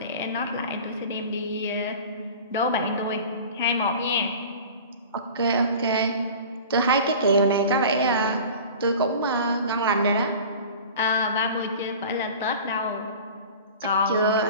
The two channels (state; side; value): inverted; both; correlation -0.39